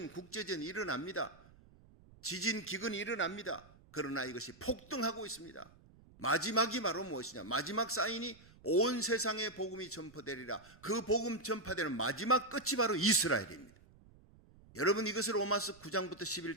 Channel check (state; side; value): noise; right; rumble, 25 dB below the sound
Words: 국제전이 일어납니다. 지진, 기근이 일어납니다. 그러나 이것이 폭등하고 있습니다. 마지막이 바로 무엇이냐? 마지막 사인이 온 세상에 복음이 전파되리라. 그 복음 전파되는 마지막 끝이 바로 이스라엘입니다. 여러분 이것을 로마서 9장부터